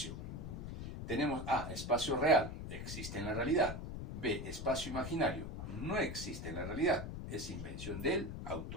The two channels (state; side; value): noise; left; rumble, 6 dB below the sound